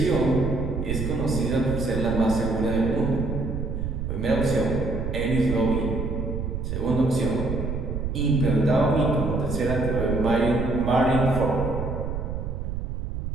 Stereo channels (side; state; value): right; noise; rumble, 3 dB below the sound